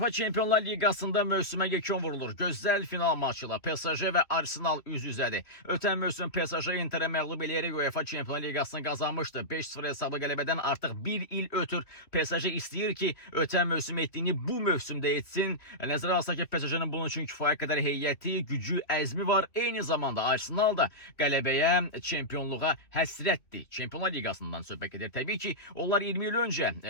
Çempionlar Ligasında mövsümə yekun vurulur. Gözəl final maçıyla PSG və Arsenal üz-üzədir. Ötən mövsüm PSG Interə məğlub eləyərək UEFA Çempionlar Ligasını qazanmışdı. 5-0 hesablı qələbədən artıq bir il ötür. PSG istəyir ki, ötən mövsüm etdiyini bu mövsümdə etsin. Nəzərə alsaq ki, PSG-nin bunun üçün kifayət qədər heyəti, gücü, əzmi var. Eyni zamanda Arsenal da qələbəyə, çempionluğa həsrətdir. Çempionlar Ligasından söhbət edir. Təbii ki, onlar 20 il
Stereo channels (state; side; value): late; right; 3.2 ms